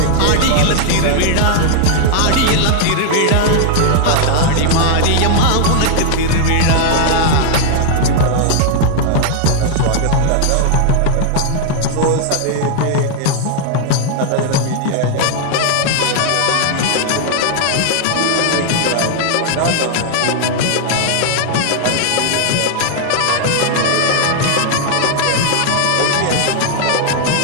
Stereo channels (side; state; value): both; different; correlation 0.00